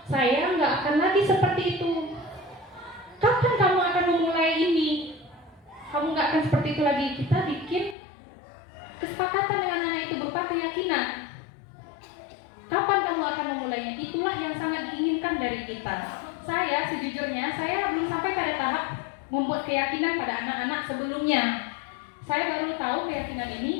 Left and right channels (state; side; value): drops out; right; at 8.0 s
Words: saya nggak akan lagi seperti itu. Kapan kamu akan memulai ini? Kamu nggak akan seperti itu lagi. Kita bikin kesepakatan dengan anak itu berupa keyakinan. Kapan kamu akan memulainya? Itulah yang sangat diinginkan dari kita. Saya sejujurnya, saya belum sampai pada tahap membuat keyakinan pada anak-anak sebelumnya. Saya baru tahu keyakinan